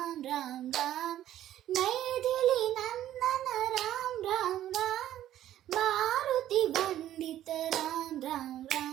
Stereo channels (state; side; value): quieter; left; 12.5 dB